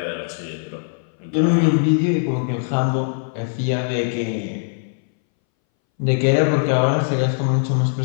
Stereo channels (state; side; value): silent; right; 63 dB below the other